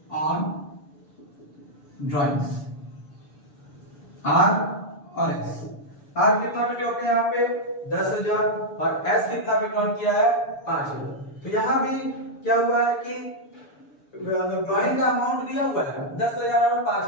on drawings. R और एस। आर कितना विड्रॉ किया यहाँ पे? 10,000 और एस कितना विड्रॉ किया है? 5,000। तो यहाँ भी क्या हुआ है कि ड्राइंग का अमाउंट दिया हुआ है 10,000 और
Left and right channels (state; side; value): late; right; 6.9 ms